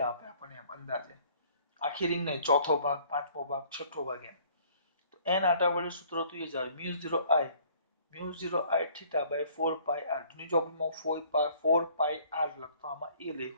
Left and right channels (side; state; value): both; inverted; correlation -0.57